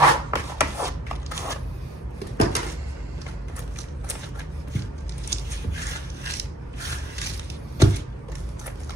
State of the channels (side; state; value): both; normal; correlation 0.58